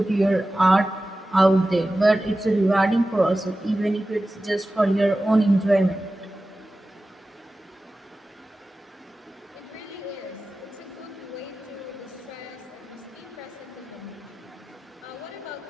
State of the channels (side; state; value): both; normal; correlation 0.95